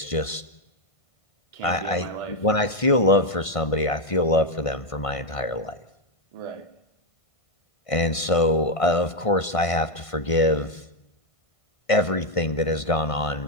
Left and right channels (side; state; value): right; late; 1.5 ms